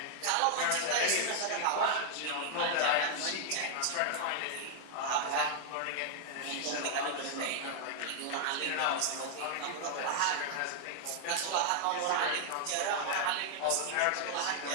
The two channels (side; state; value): both; different; correlation 0.00